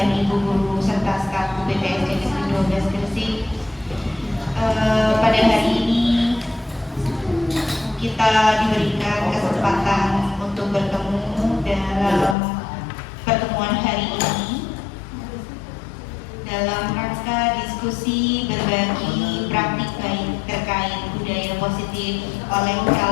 Ibu guru serta staf BTS Negeri 12 Gresik. Pada hari ini kita diberikan kesempatan untuk bertemu dalam pertemuan hari ini dalam rangka diskusi berbagi praktik baik terkait budaya positif oleh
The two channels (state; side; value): drops out; right; at 12.4 s